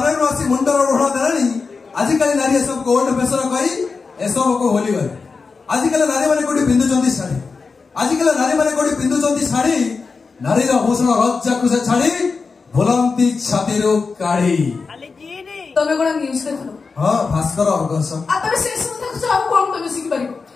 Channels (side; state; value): right; quieter; 4.6 dB